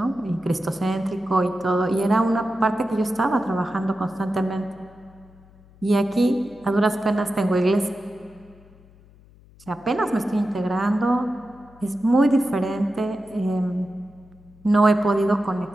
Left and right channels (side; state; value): left; noise; hum, 26 dB below the sound